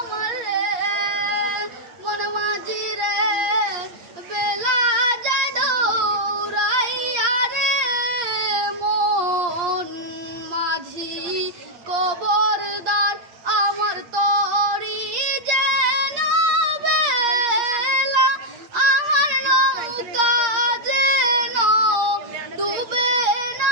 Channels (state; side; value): late; left; 8.7 ms